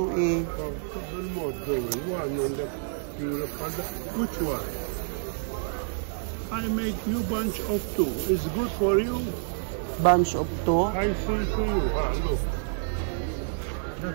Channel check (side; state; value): left; silent; digital silence